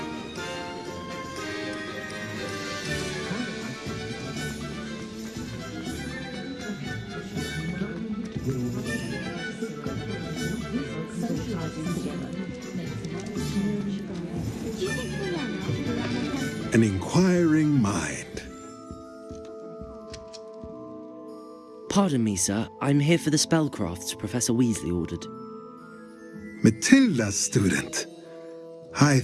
An inquiring mind. Pardon me, sir. I'm here for the spellcrafts Professor Weasley ordered. Matilda's student. I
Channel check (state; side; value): identical; both; correlation 1.00